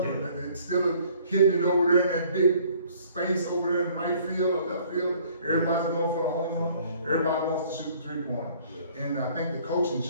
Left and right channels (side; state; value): both; inverted; correlation -0.57